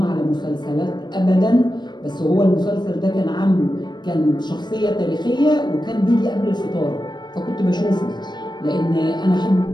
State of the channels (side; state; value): right; late; 0.21 ms